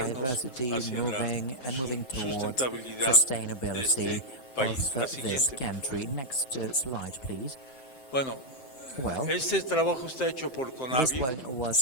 moving towards sustainability of this country. Next slide, please. Well, this work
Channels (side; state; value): right; late; 7.7 ms